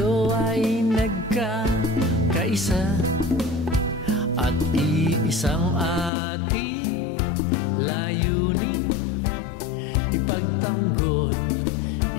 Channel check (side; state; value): right; drops out; at 6.1 s